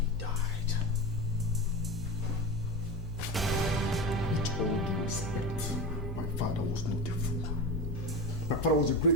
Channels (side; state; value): both; normal; correlation 0.23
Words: died. With all due respect, my father was not a fool. My father was a